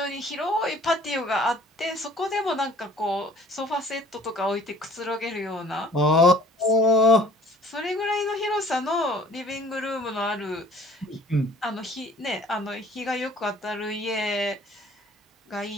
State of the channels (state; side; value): normal; both; correlation 0.52